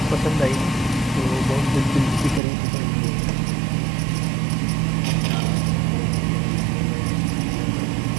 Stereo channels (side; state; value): left; drops out; at 2.4 s